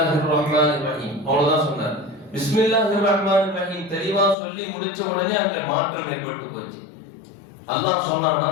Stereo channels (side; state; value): right; drops out; at 4.4 s